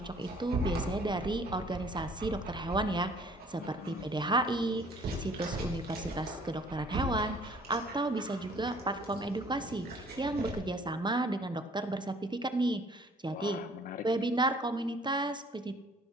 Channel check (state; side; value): normal; both; correlation 0.56